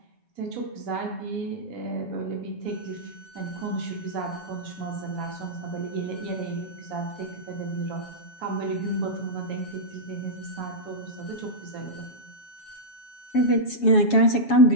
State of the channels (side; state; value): right; late; 7.3 ms